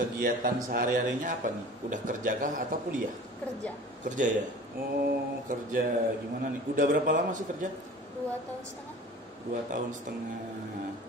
sehari-harinya apa nih? Udah kerja kah atau kuliah? Kerja. Kerja ya? Oh kerja gimana nih? Udah berapa lama sih kerja? 2 tahun setengah. 2 tahun setengah.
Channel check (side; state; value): both; normal; correlation 0.42